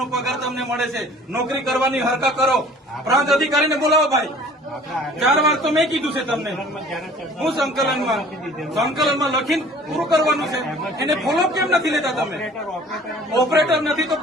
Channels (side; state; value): both; normal; correlation 0.50